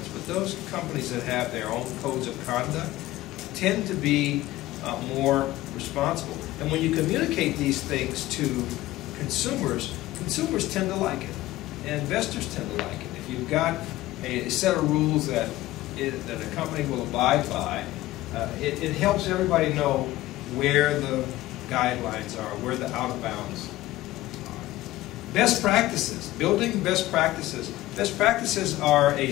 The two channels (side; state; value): right; quieter; 16.6 dB